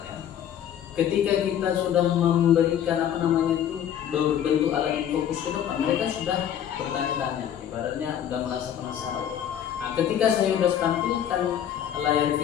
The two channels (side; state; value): right; quieter; 9.8 dB